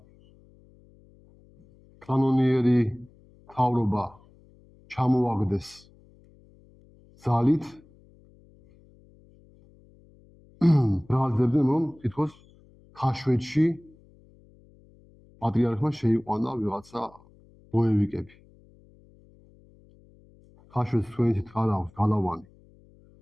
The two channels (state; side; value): noise; left; hum, 28 dB below the sound